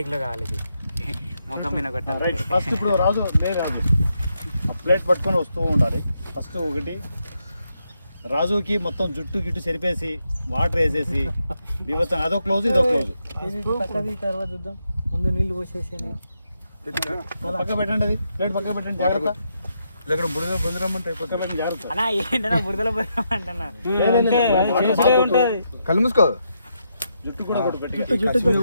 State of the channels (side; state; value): both; inverted; correlation -0.81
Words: కావాలి. ఇది ముఖం మీద కొట్టాలి. రైట్. ఫస్ట్ ఇప్పుడు రాజు ప్లేట్ పట్టుకొని వస్తూ ఉండాలి. ఫస్ట్ ఒకటి రాజుకి మొత్తం జుట్టు గిట్టు చెరిపేసి వాటర్ వేసేసి బీభత్సం, అదో క్లోజ్ ఇదో క్లోజ్. తర్వాత చూద్దాం, ముందు నీళ్ళు పోసేసి పక్క పెట్టండి, అది ప్లేట్ పక్క పెట్టండి, జాగ్రత్త. ఇక్కడ బురదరమ్మంటే పక్క పెట్టి జాగ్రత్త. అన్నా ఏంటన్నా బురదలో పోయామంటున్నా, కళ్ళు మూసుకో. జుట్టు కూడా కొట్టు పెట్టి